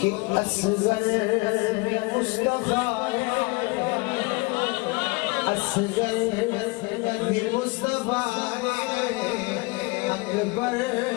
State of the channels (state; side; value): quieter; right; 26.9 dB